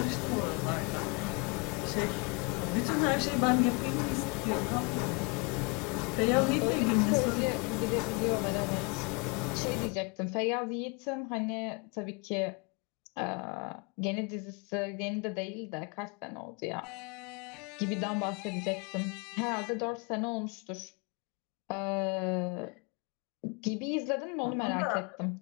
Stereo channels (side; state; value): right; quieter; 30.4 dB